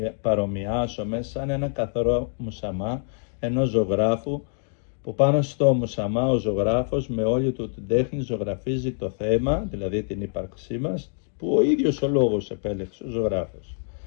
παρομοιάσουμε σαν ένα καθαρό μουσαμά ενός ζωγράφου, που πάνω στο μουσαμά ο ζωγράφος με όλη του την τέχνη ζωγραφίζει το θέμα, δηλαδή την ύπαρξή μας, που ο ίδιος ο λόγος επέλεξε ο ζωγράφος.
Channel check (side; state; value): right; silent; 62 dB below the other